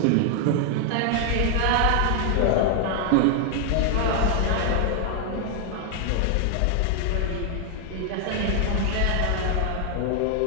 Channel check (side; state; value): both; different; correlation 0.00